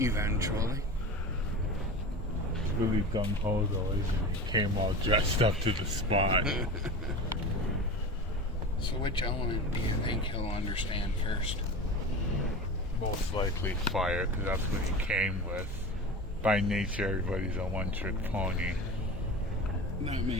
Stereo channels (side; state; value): both; normal; correlation 0.31